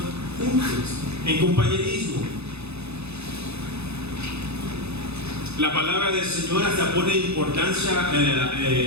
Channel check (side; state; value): left; late; 0.79 ms